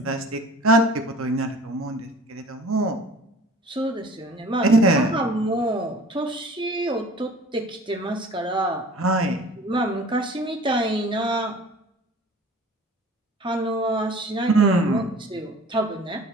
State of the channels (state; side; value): normal; both; correlation 0.45